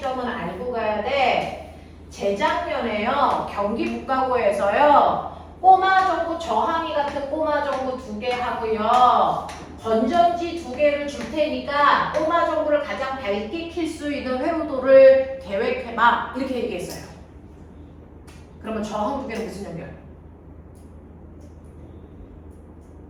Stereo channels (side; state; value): both; identical; correlation 1.00